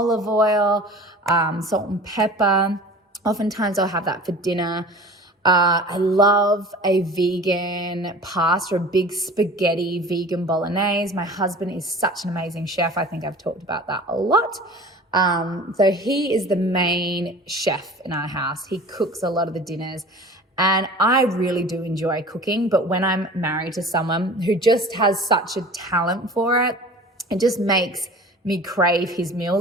oil, salt and pepper. Oftentimes I'll have that for dinner. I love a vegan pasta, a big spaghetti vegan bolognese. My husband is such an amazing chef. I think I've talked about that a lot. So he is the main chef in our house. He cooks a lot of the dinners. And I really do enjoy cooking, but when I'm married to someone who just has such a talent for it, it just makes me crave his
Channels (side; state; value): both; normal; correlation 0.41